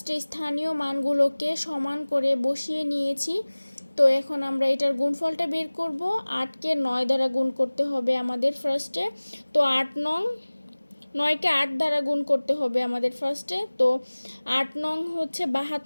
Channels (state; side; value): inverted; both; correlation -1.00